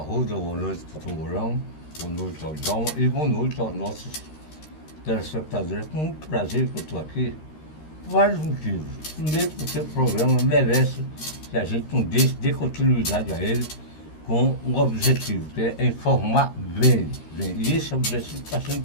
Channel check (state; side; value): late; right; 13 ms